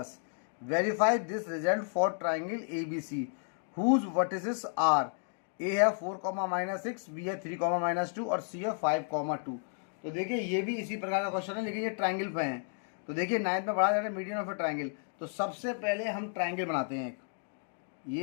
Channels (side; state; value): right; silent; 56 dB below the other